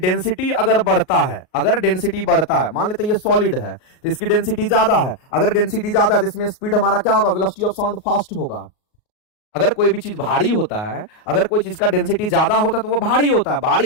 अगर बढ़ता है, अगर डेंसिटी बढ़ता है, मान लेते हैं ये सॉलिड है तो इसकी डेंसिटी ज्यादा है। अगर डेंसिटी ज्यादा है तो इसमें स्पीड हमारा क्या होगा, वेलोसिटी ऑफ साउंड फास्ट होगा। अगर कोई भी चीज भारी होता है, अगर कोई चीज का डेंसिटी ज्यादा होता है तो वो भारी होता है, भारी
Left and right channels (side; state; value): right; late; 38 ms